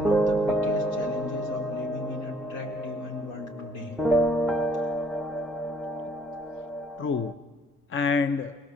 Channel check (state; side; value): normal; both; correlation 0.61